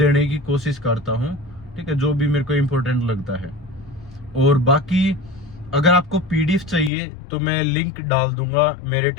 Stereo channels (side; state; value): right; drops out; at 6.9 s